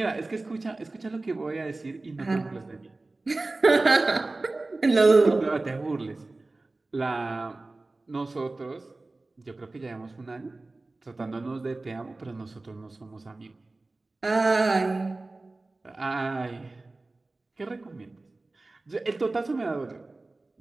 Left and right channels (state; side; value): quieter; left; 3.2 dB